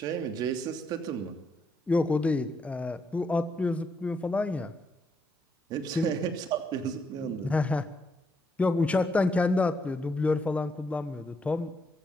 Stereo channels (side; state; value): both; normal; correlation 0.78